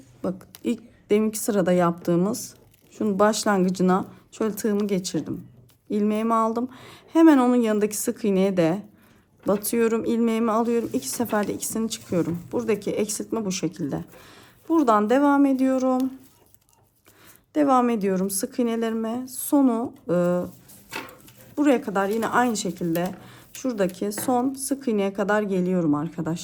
bak ilk deminki sırada yaptığımız şunun başlangıcına şöyle tığımı geçirdim. İlmeğimi aldım. Hemen onun yanındaki sık iğneye de batıyorum. İlmeğimi alıyorum. 2 seferde ikisini çıkıyorum. Buradaki eksiltme bu şekilde. Buradan devam ediyorum. Devam ediyorum sık iğnelerime. Sonu buraya kadar yine aynı şekilde şuradaki son sık iğneye kadar geliyorum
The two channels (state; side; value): identical; both; correlation 1.00